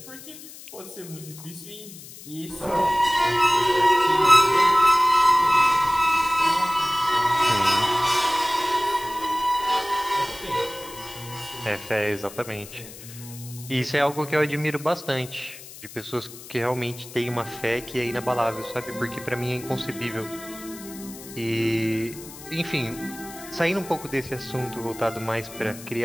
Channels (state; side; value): noise; left; hiss, 16 dB below the sound